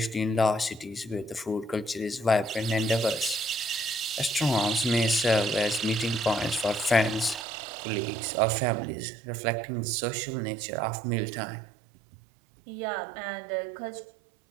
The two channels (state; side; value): drops out; left; at 7.5 s